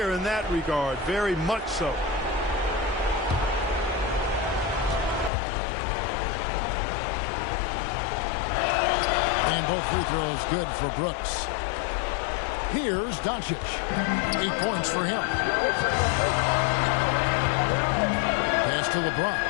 in that regard, very much so. And both free throws good for Brooks. Here's Doncic. 8 points for him. Pass to LeBron.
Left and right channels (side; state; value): right; drops out; at 5.3 s